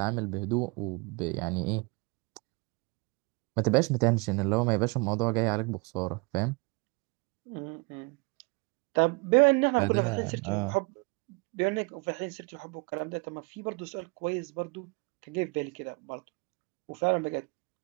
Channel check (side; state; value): left; quieter; 29.5 dB